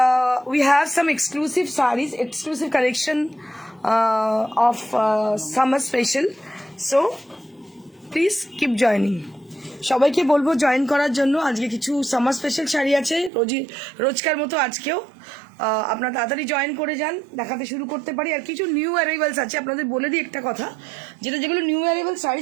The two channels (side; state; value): left; drops out; at 13.3 s